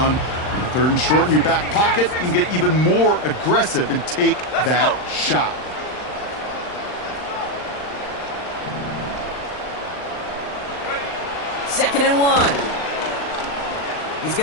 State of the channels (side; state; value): right; late; 39 ms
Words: And the third and short in your back pocket, you can get even more aggressive and take that shot. Second and 1. He's